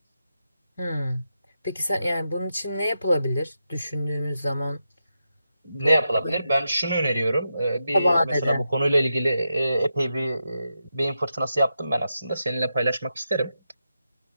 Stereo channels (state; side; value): inverted; both; correlation -0.86